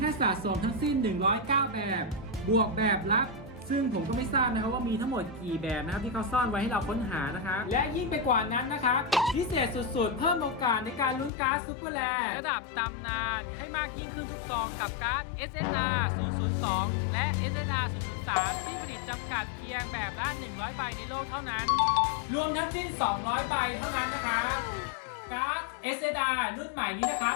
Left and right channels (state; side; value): drops out; right; at 11.3 s